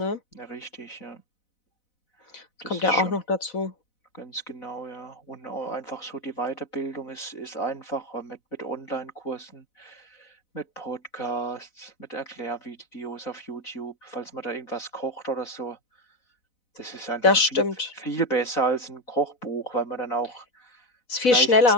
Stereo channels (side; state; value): right; late; 4.0 ms